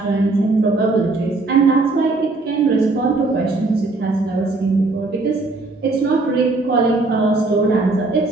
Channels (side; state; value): left; quieter; 3.3 dB